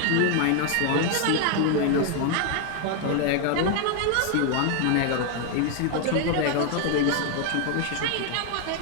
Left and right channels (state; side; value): different; both; correlation 0.01